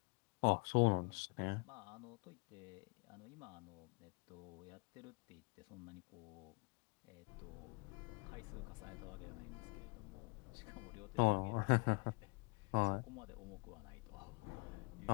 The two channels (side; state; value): right; quieter; 31.6 dB